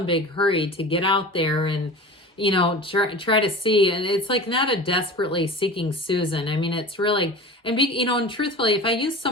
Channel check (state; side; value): normal; both; correlation 0.35